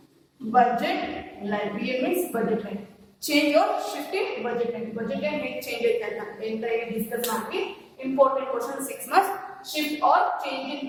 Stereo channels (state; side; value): identical; both; correlation 1.00